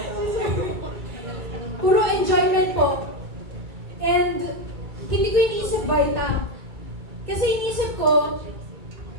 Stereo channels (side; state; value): left; late; 2.3 ms